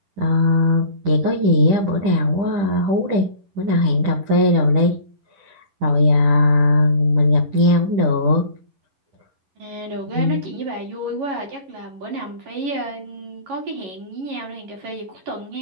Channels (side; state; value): left; late; 10 ms